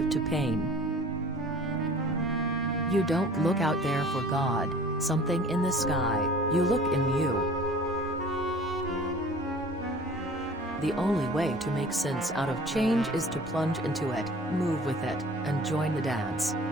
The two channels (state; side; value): normal; both; correlation 0.47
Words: to pain. You don't look out there for God, something in the sky, you look in you. The only way to make sense out of change is to plunge into it, move with it, and join the dance.